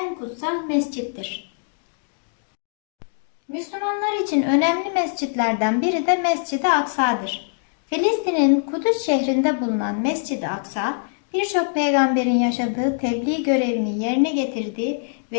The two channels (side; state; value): right; silent; digital silence